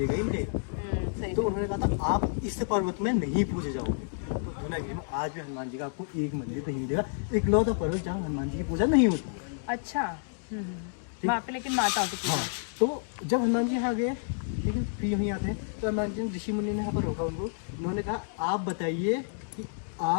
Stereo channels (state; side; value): silent; right; digital silence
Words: ही मिलेगा। तो उन्होंने कहा था आप इस पर्वत में नहीं पूजे जाओगे। तो दुनागिरी में आज भी हनुमान जी का आपको एक मंदिर नहीं मिलेगा, इकलौता पर्वत जहाँ हनुमान जी की पूजा नहीं होती। अच्छा, वहाँ पे लेकिन माता की पूजा। हाँ, तो जब हनुमान जी यहाँ गए, लेकिन फिर यहीं आते हैं तो हनुमान जी ऋषि मुनि ने यहाँ पर रोका उनको। उन्होंने कहा आप बताइए कि